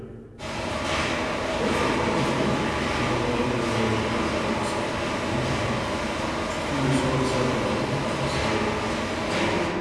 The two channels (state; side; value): identical; both; correlation 1.00